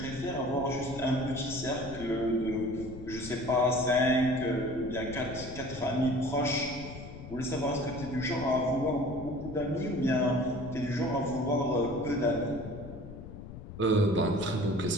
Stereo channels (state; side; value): noise; left; rumble, 12 dB below the sound